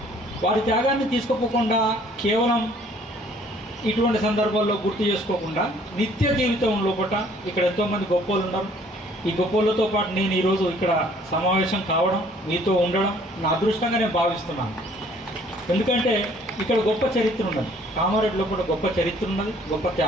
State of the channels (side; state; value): both; normal; correlation 0.58